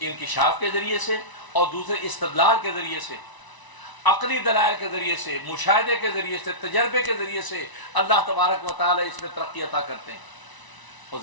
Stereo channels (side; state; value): right; late; 1.0 ms